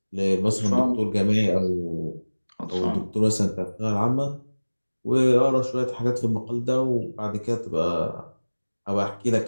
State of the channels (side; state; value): both; inverted; correlation -1.00